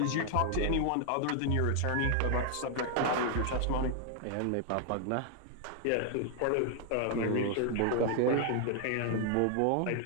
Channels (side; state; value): both; different; correlation 0.00